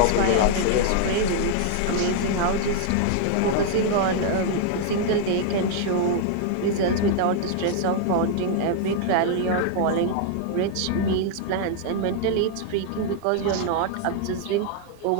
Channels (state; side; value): different; both; correlation -0.01